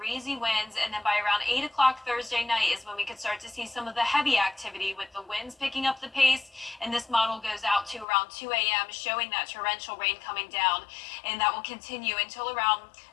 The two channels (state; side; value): drops out; right; at 8.1 s